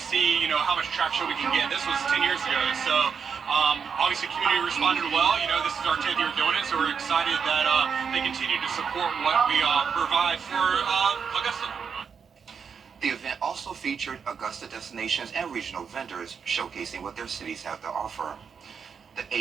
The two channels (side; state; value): left; quieter; 6.4 dB